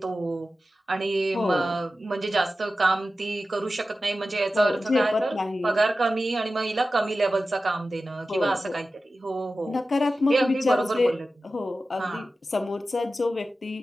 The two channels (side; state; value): both; normal; correlation 0.94